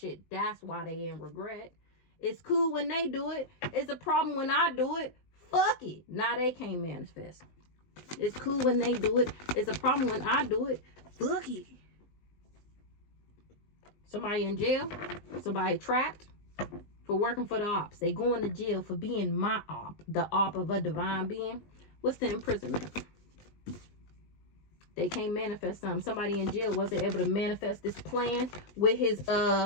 That's why they in regret. It's cool when they do it. It's a problem when I do it. Fuck it. Now they can't manifest. It's cool when they do it. It's a problem when I do it. Fuck it. Somebody in jail. Somebody trapped for working for the ops. They going to jail for being my op. The op of a divine being. What's the imprisonment? They can't manifest something. Somebody in jail wasn't able to manifest this plan with his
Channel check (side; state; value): right; late; 20 ms